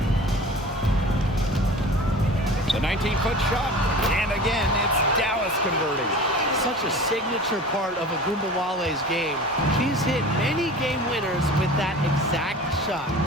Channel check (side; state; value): both; normal; correlation 0.38